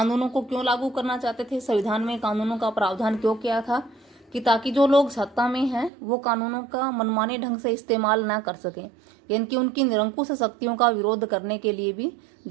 को क्यों लागू करना चाहते थे, संविधान में कानूनों का प्रावधान क्यों किया था, कि ताकि जो लोग सत्ता में हैं वो कानूनों का मनमाने ढंग से इस्तेमाल ना कर सकें, यानी कि उनकी निरंकुश शक्तियों का विरोध करने के लिए भी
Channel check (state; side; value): drops out; left; at 5.9 s